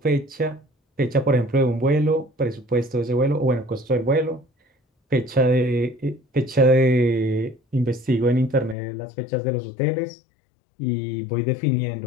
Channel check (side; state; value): right; drops out; at 8.8 s